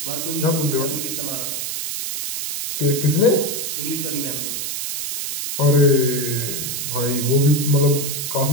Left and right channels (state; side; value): noise; right; hiss, 3 dB below the sound